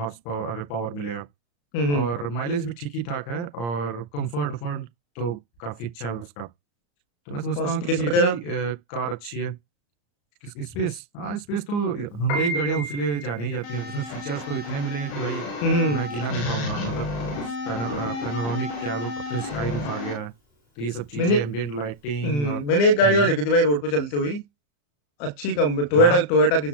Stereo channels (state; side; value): late; right; 34 ms